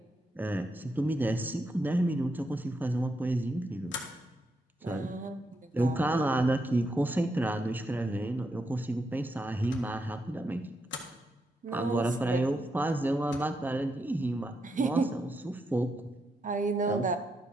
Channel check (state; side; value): normal; both; correlation 0.82